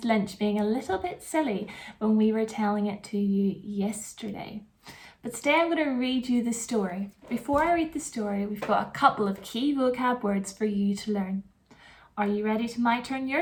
Lynch being a little bit silly when we were telling it to you yesterday. But today I'm going to read you the story. Before I read the story, we've got a couple of key vocab words for you to learn. Are you ready to my turn,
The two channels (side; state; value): both; identical; correlation 1.00